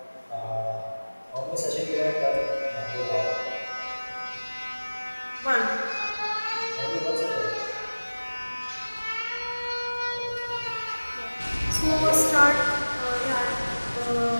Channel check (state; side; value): inverted; both; correlation -1.00